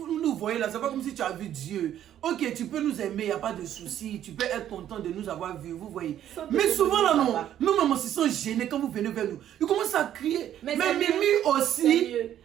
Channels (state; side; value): quieter; left; 11.1 dB